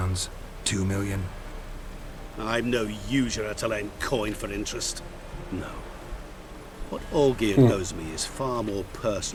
2 million? I'm no usurer to lend coin for interest. No. What Olgierd owes me is far more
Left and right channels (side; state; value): both; identical; correlation 1.00